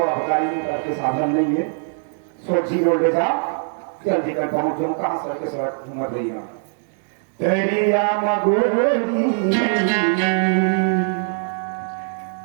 के साधन नहीं है सोची बोल रहा जल्दी कर पहुंचो कहां सर के सड़क घूम रही है तेरिया मगोरी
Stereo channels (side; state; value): left; silent; 65 dB below the other